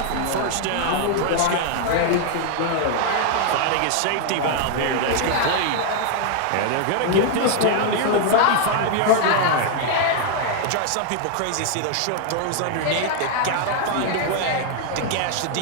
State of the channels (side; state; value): both; different; correlation 0.00